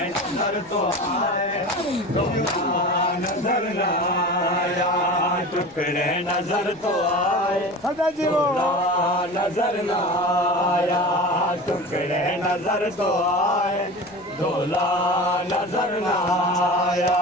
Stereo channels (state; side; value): noise; left; rumble, 28 dB below the sound